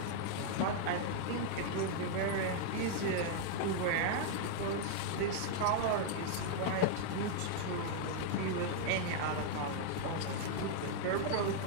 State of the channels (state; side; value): different; both; correlation 0.00